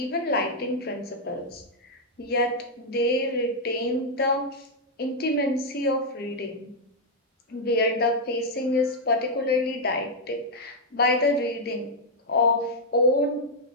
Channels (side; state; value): both; normal; correlation -0.02